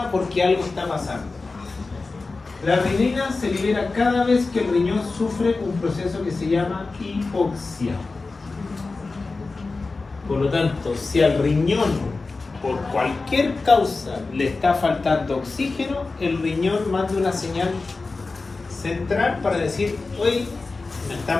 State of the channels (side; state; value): right; quieter; 3.8 dB